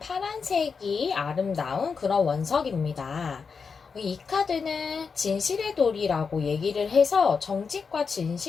아름다운 그런 원석입니다. 이 카드는 진실의 돌이라고 얘기를 해서 정직과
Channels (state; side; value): quieter; right; 5.4 dB